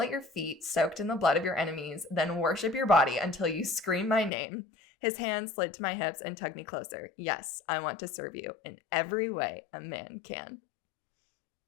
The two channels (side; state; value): right; drops out; at 4.3 s